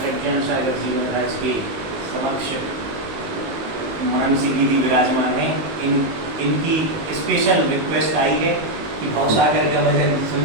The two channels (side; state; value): left; late; 19 ms